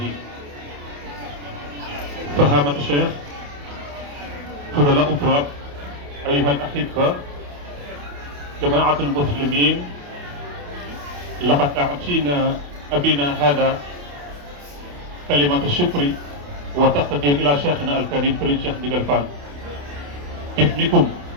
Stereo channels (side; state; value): left; late; 28 ms